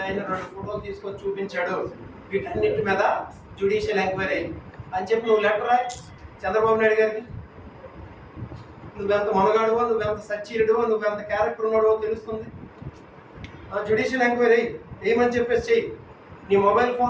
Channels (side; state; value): both; identical; correlation 1.00